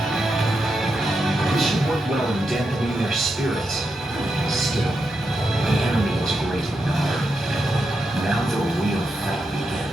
This should work well in dampening their spirits. Still, the enemy is great in number. Now the real fight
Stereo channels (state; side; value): normal; both; correlation 0.85